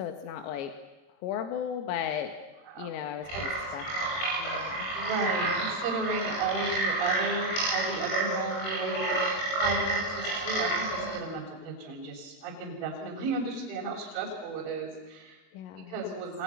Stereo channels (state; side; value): late; right; 22 ms